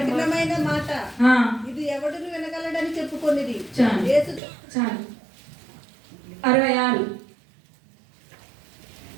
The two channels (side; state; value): left; drops out; at 4.4 s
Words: మాట, ఆ, ఇది ఎవడును వినగలడని చెప్పుకొనిది. చాలు. యేసు చాలు. 66.